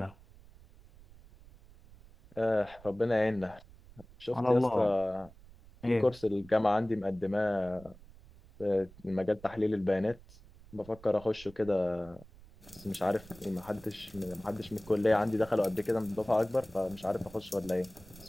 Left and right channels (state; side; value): noise; right; rumble, 22 dB below the sound